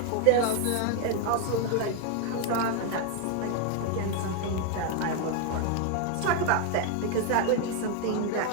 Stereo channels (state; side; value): different; both; correlation 0.01